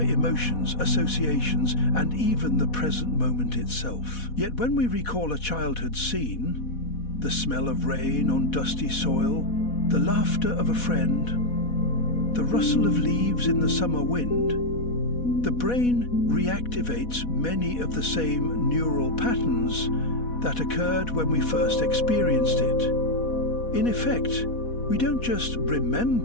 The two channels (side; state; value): right; late; 4.1 ms